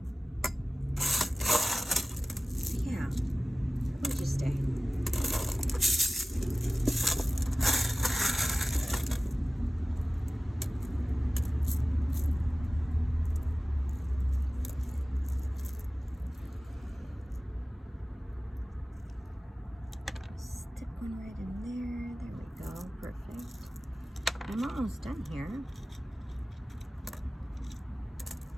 yeah, gorgeous day. Stick one right in there. There we go. Perfect. I'm almost done here.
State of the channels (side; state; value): both; normal; correlation 0.97